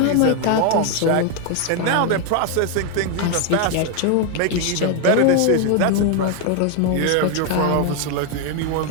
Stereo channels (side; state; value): both; different; correlation 0.01